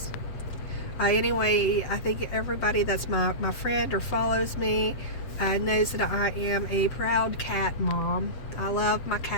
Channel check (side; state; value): right; late; 7.9 ms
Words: Anyway, I think everybody that's my friend or follows me knows that I am a proud cat mom. I love my